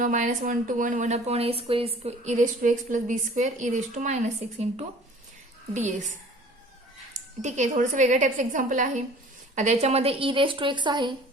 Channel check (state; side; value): normal; both; correlation 0.48